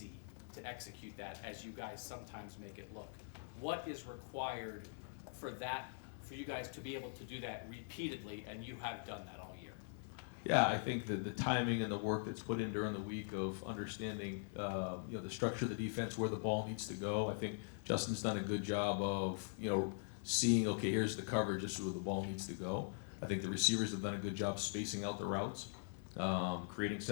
to execute that as you guys sometimes make it look. What is required for you guys to be able to do that repeatedly, and you have done that all year? Yeah, I think that the timing and the work that's put in during the week of understanding, the structure of the defense, where the ball needs to go. I think Justin's done a good job of, seeing, okay, here's the coverage, this is where the ball needs to go. I think the receivers have done a good job spacing out the routes, creating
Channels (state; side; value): silent; right; digital silence